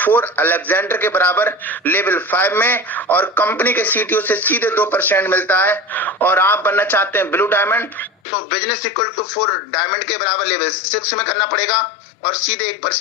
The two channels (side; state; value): right; drops out; at 8.1 s